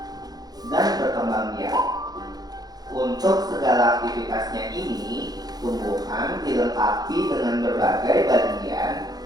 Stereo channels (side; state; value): left; late; 0.19 ms